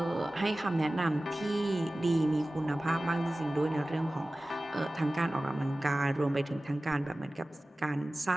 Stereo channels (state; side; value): normal; both; correlation 0.97